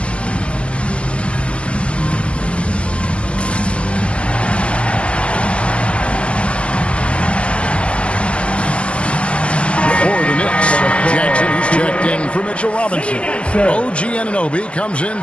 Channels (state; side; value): late; right; 0.059 ms